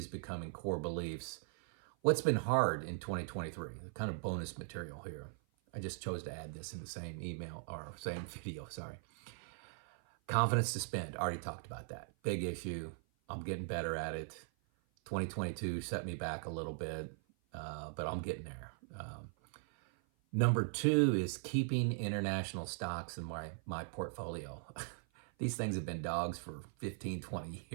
becoming core beliefs. What's been hard in 2023? Kind of bonus material here. I just chose to add this in the same email or same video, sorry. Confidence to spend, already talked about that. Big issue. I'm getting better at it. 2022 set me back a little bit, but I'm getting there. Number 2 is keeping international stocks in my portfolio. These things have been dogs for 15, 20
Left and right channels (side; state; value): left; silent; 51 dB below the other